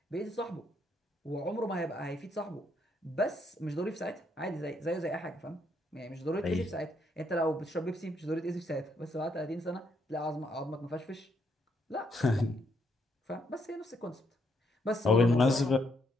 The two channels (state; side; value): normal; both; correlation 0.74